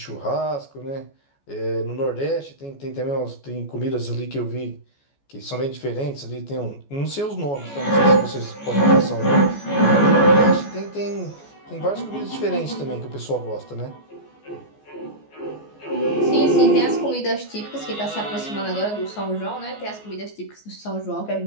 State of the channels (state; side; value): late; right; 14 ms